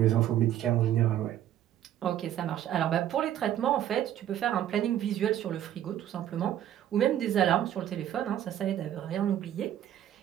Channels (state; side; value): quieter; left; 11.5 dB